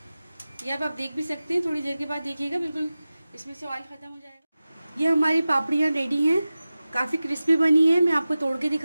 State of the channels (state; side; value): inverted; both; correlation -0.96